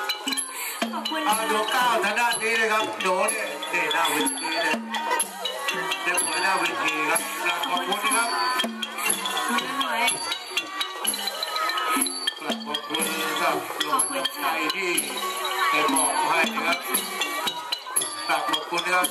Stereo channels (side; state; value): both; identical; correlation 1.00